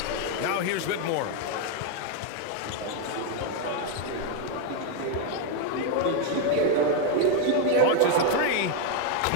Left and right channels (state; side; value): different; both; correlation 0.00